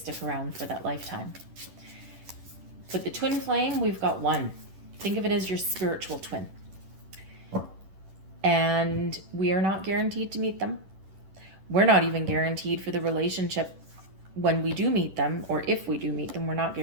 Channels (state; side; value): late; left; 10 ms